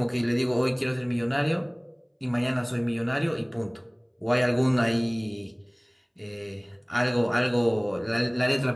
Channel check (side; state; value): both; identical; correlation 1.00